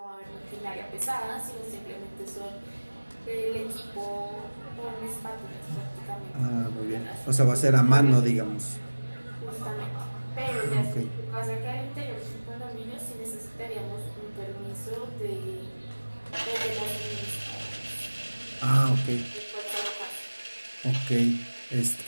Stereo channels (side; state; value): both; inverted; correlation -1.00